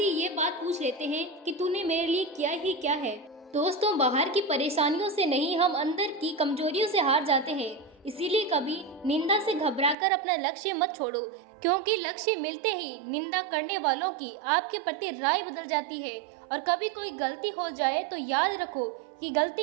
ये बात पूछ लेते हैं कि तूने मेरे लिए किया ही क्या है। दोस्तों, बाहर की परेशानियों से नहीं, हम अंदर की कमजोरियों से हार जाते हैं। इसीलिए कभी निंदा से घबराकर अपना लक्ष्य मत छोड़ो, क्योंकि लक्ष्य मिलते ही निंदा करने वालों की आपके प्रति राय बदल जाती है। और कभी कोई गलती हो जाए तो याद रखो कि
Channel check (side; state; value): left; drops out; at 10.0 s